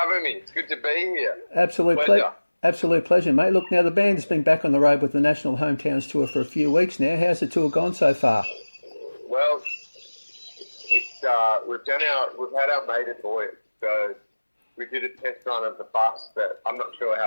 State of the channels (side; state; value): both; inverted; correlation -1.00